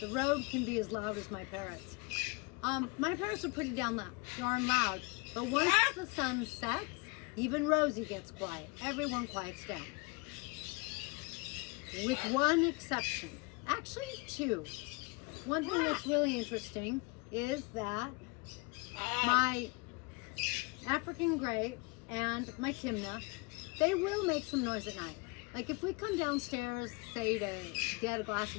the road can be as loud as my parrots. My parrots are pretty darn loud, but once the sun sets, even Rosie gets quiet. Everyone quiets down. With one exception. Actually, 2. One thing that's really interesting is that my African Grey and my Timna, they will make some noise at night. Like if we come downstairs, say to get a glass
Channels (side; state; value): right; quieter; 28.5 dB